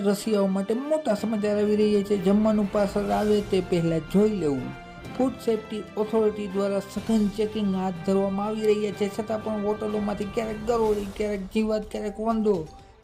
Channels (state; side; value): identical; both; correlation 1.00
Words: માટે મોટા સમાચાર આવી રહ્યા છે। જમવાનું પાર્સલ આવે તે પહેલાં જોઈ લેવું। ફૂડ સેફ્ટી ઓથોરિટી દ્વારા સઘન ચેકિંગ હાથ ધરવામાં આવી રહ્યા છે, છતાં પણ હોટલોમાંથી ક્યારેક ગરોળી, ક્યારેક જીવાત, ક્યારેક વંદો